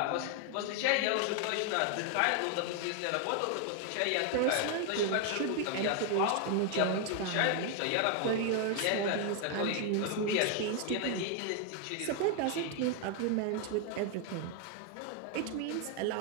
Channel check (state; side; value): different; both; correlation 0.00